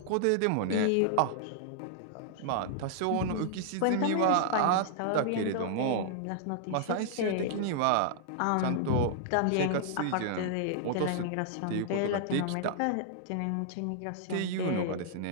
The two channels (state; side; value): different; both; correlation -0.01